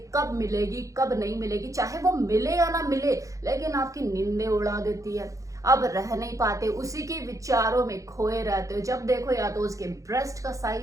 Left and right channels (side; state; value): left; late; 0.16 ms